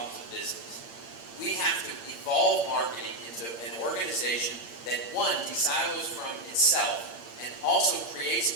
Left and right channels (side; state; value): right; late; 8.7 ms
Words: of business, we have to evolve marketing into an organization that, one, de-silos from itself and also